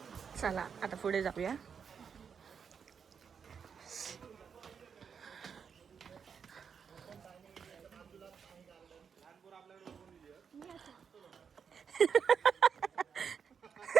चला आता पुढे जाऊया.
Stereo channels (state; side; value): quieter; left; 6.7 dB